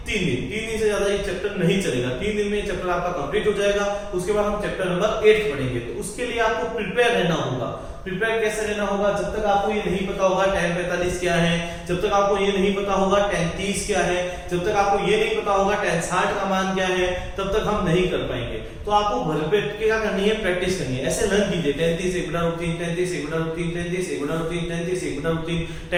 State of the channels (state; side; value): identical; both; correlation 1.00